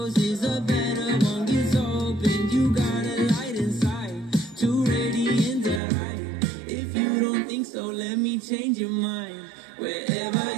a better one gets open. You got a light inside, too radiant to hide. If you don't think so, let me change your mind. Wherever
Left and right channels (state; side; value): drops out; left; at 5.8 s